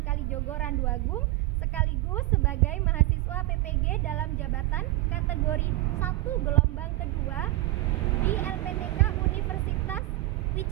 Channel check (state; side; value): quieter; left; 18.2 dB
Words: Kalijogo Randu Agung, sekaligus sebagai mahasiswa PPG dalam jabatan kategori 1 gelombang kedua di LPTK Universitas